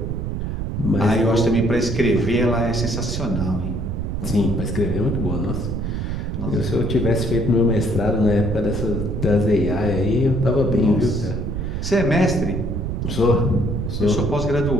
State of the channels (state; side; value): noise; right; rumble, 3 dB below the sound